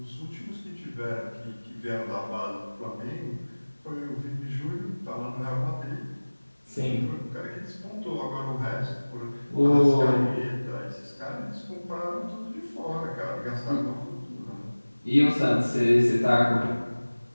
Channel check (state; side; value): inverted; both; correlation -1.00